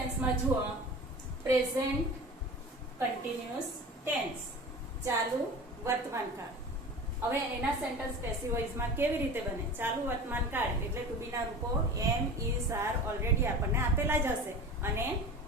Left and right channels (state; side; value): normal; both; correlation 0.35